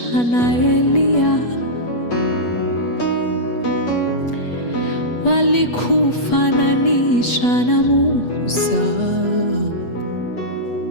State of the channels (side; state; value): right; late; 8.2 ms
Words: na Eliya, walikufananisha na Musa,